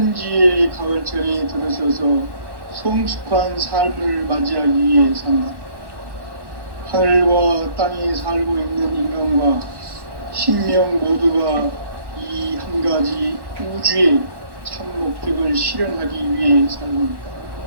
가을철에 들어서서 성숙한 삶을 맞이하기 위해 산다. 하늘과 땅에 살고 있는 인간과 신명 모두가 이 한 가지 우주의 참 목적을 실현하기 위해 살고 있다.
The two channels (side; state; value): left; late; 1.1 ms